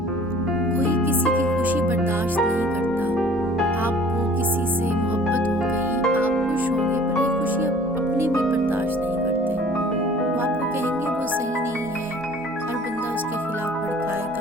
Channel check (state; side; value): normal; both; correlation 0.50